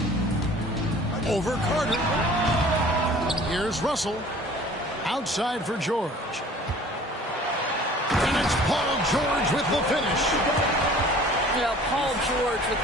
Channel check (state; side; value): normal; both; correlation 0.48